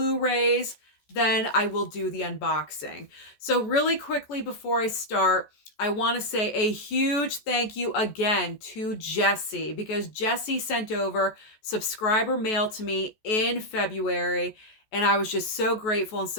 then I will do the unboxing. So really quickly before I start, I want to say a huge thank you again to Jessie because Jessie sent over subscriber mail to me in February. And I was just so grateful and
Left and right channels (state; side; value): late; right; 14 ms